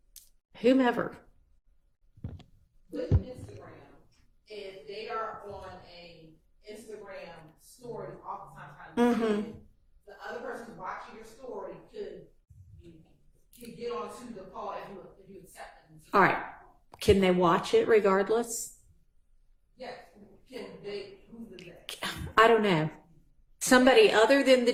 whomever. With Instagram, if they are on a Instagram story, oftentimes the other person watching your story could get onto the call if you accept them. All right. Can they watch it regardless? Yes. Can they? Who's the next? I don't know. Somebody other than the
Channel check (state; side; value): identical; both; correlation 1.00